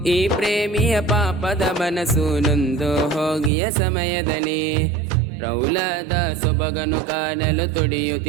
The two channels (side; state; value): left; drops out; at 3.5 s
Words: ಈ ಪ್ರೇಮಿಯ ಪಾಪದ ಮನಸ್ಸು ನೊಂದು ಹೋಗಿಯ ಸಮಯದಲ್ಲಿ ರೌಲದ ಸೊಬಗನು ಕಾಣಲು